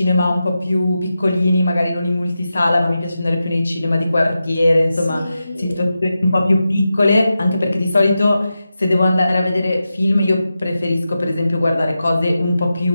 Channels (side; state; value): both; inverted; correlation -0.91